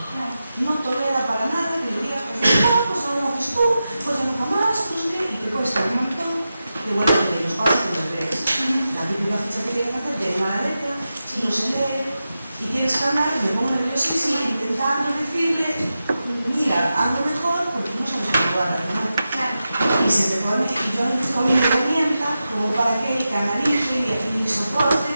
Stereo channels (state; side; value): inverted; both; correlation -0.91